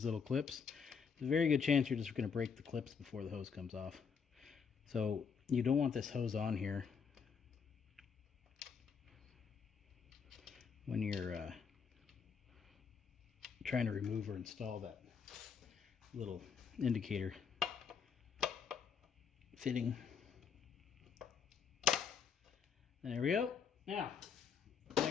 little clips, there's a very good chance you're just going to break the clips before the hose comes off. So you don't want this hose on here when you're trying to remove or install that little indicator fitting. There we go. Now,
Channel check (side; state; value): right; quieter; 6.4 dB